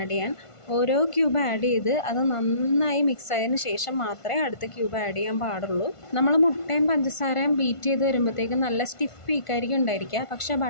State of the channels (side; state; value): right; late; 1.5 ms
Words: ചെയ്യാൻ. ഓരോ ക്യൂബ് ആഡ് ചെയ്ത് അത് നന്നായി മിക്സ് ആയതിനു ശേഷം മാത്രമേ അടുത്ത ക്യൂബ് ആഡ് ചെയ്യാൻ പാടുള്ളൂ. നമ്മൾ മുട്ടയും പഞ്ചസാരയും ബീറ്റ് ചെയ്ത് വരുമ്പോഴത്തേക്കും നല്ല സ്റ്റിഫ് പീക്കായിരിക്കും ഉണ്ടായിരിക്കുക. പക്ഷേ